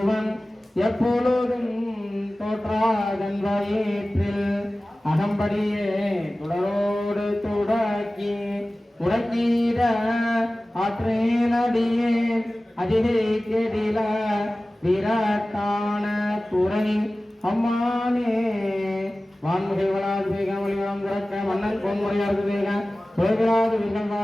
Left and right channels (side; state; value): both; normal; correlation 0.97